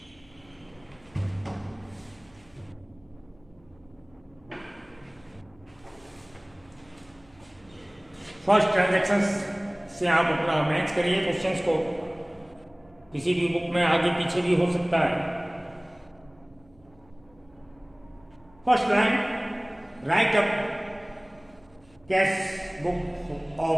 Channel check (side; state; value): right; noise; hum, 29 dB below the sound